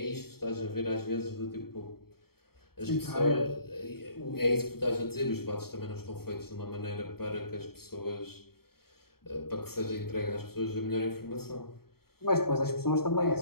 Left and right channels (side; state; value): right; late; 0.95 ms